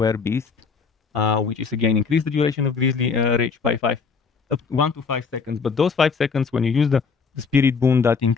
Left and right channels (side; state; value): right; quieter; 5.3 dB